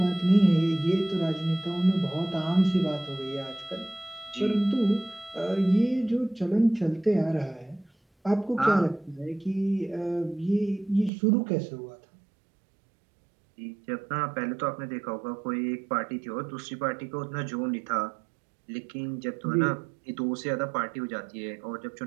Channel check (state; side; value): drops out; left; at 11.1 s